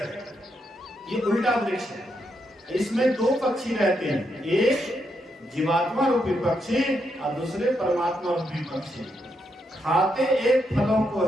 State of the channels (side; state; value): both; normal; correlation 0.81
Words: ये उल्टा वृक्ष है। इसमें दो पक्षी रहते हैं, एक जीवात्मा रूपी पक्षी और दूसरे परमात्मा रूपी पक्षी। खाते एक फलों को